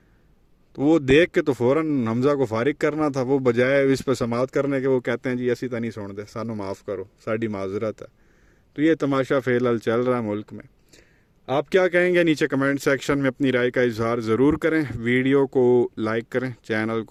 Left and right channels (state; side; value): identical; both; correlation 1.00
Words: تو وہ دیکھ کے تو فوراً حمزہ کو فارغ کرنا تھا. وہ بجائے اس پہ سماعت کرنے کے وہ کہتے ہیں جی ایسی تو نہیں سن دے, سانو معاف کرو, ساڑی معذرت ہے. تو یہ تماشا فی الحال چل رہا ہے ملک میں. آپ کیا کہیں گے نیچے کمنٹ سیکشن میں اپنی رائے کا اظہار ضرور کریں. ویڈیو کو لائک کریں, چینل